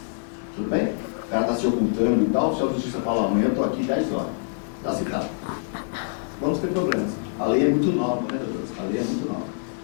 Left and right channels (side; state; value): right; silent; digital silence